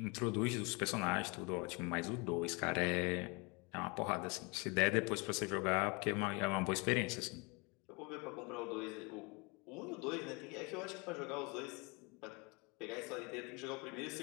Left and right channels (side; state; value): right; quieter; 29.6 dB